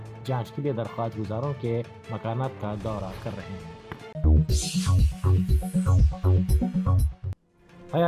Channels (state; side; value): identical; both; correlation 1.00